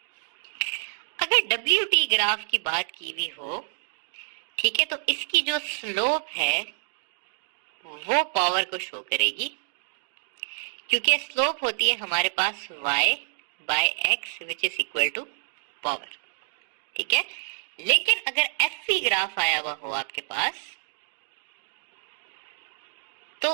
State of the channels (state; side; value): silent; left; digital silence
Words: अगर WT ग्राफ की बात की हुई हो, ठीक है, तो इसकी जो स्लोप है वो पावर को शो करेगी, क्योंकि स्लोप होती है हमारे पास y/x which is equal to power, ठीक है। लेकिन अगर FV ग्राफ आया हुआ हो आपके पास तो